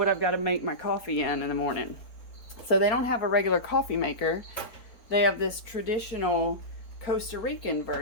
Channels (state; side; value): late; right; 4.2 ms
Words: I've got to make my coffee in the morning. So they don't have a regular coffee maker. They have this traditional Costa Rican